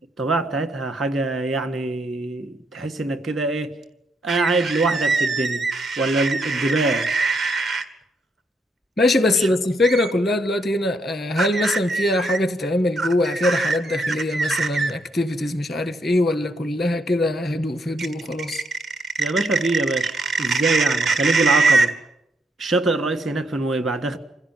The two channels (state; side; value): normal; both; correlation 0.76